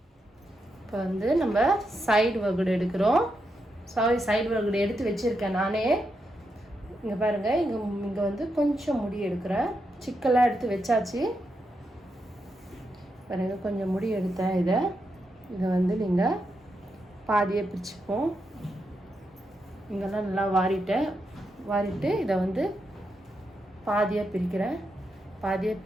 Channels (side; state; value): both; normal; correlation 0.84